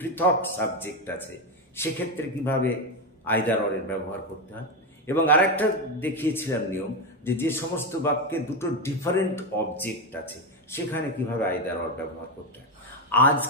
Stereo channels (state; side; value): normal; both; correlation 0.10